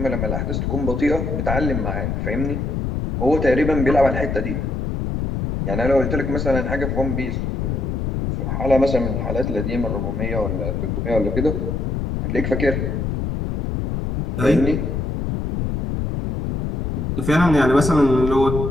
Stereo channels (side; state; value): left; noise; rumble, 1 dB below the sound